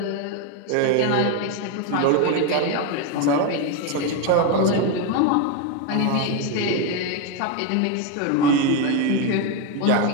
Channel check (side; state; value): both; different; correlation 0.02